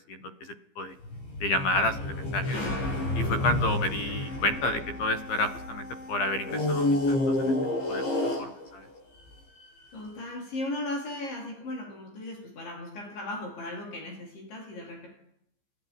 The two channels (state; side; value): late; right; 15 ms